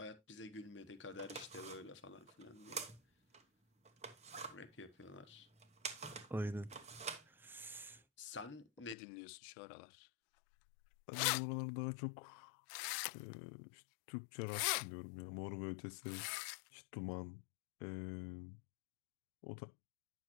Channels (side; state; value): right; drops out; at 9.0 s